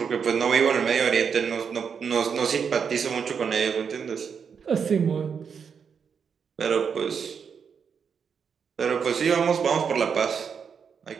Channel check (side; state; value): left; quieter; 6.6 dB